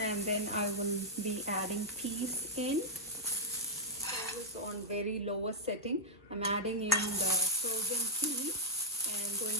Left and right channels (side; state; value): both; normal; correlation -0.01